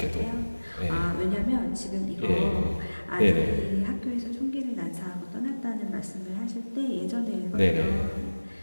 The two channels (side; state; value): both; inverted; correlation -1.00